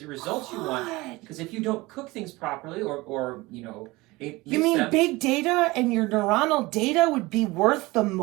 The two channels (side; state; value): left; quieter; 21.5 dB